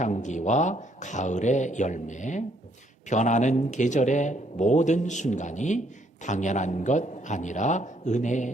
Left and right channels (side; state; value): both; normal; correlation 0.69